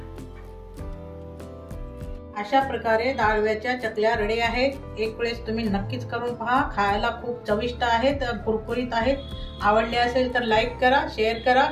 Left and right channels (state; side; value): identical; both; correlation 1.00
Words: अशा प्रकारे डाळव्याच्या चकल्या रेडी आहेत। एक वेळेस तुम्ही नक्कीच करून पहा, खायला खूप चविष्ट आहेत, कुरकुरीत आहेत। आवडले असेल तर लाईक करा, शेअर करा,